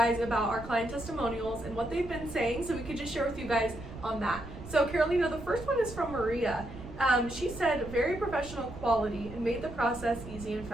about our client testimonials and what they've been saying, so we could just share with you guys on that. So Carolina, the first one is from Maria. She said, very professional quality and made the process easy and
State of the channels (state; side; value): noise; right; rumble, 13 dB below the sound